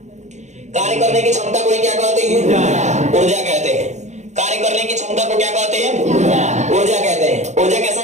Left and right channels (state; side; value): late; left; 0.34 ms